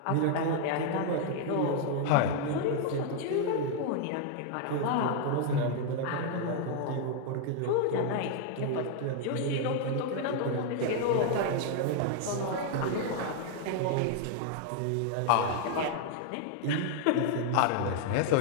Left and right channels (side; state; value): both; different; correlation 0.00